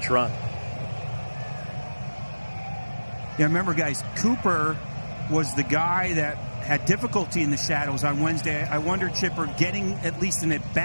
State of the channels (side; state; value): both; inverted; correlation -1.00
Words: run. Yeah, remember, guys, Cooper was the guy that had difficulty in the shadows on Wednesday. I wonder, Chipper, getting at least an